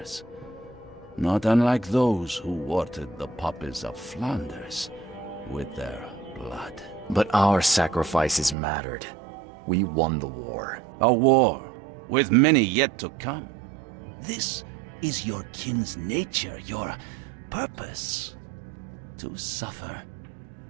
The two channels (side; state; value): left; drops out; at 8.6 s